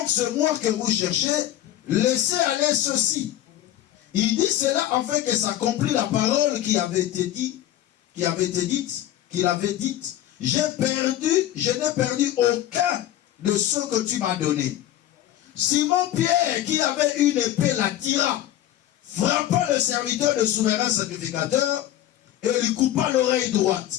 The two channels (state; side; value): quieter; right; 12.8 dB